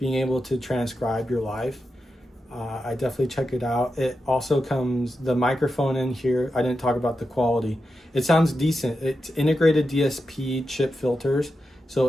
able to transcribe your life. I definitely check it out. It also comes, the microphone in here, I didn't talk about the quality. It sounds decent. It's integrated DSP chip filters, so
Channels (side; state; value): both; normal; correlation 0.89